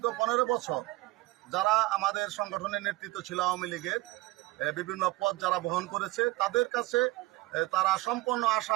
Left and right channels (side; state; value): left; quieter; 20.3 dB